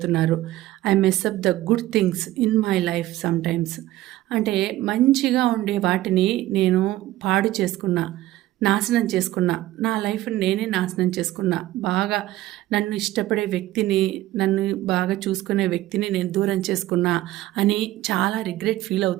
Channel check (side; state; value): left; quieter; 15.7 dB